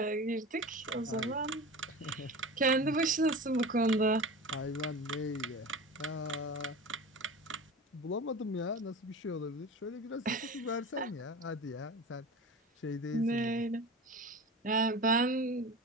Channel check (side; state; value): both; normal; correlation 0.31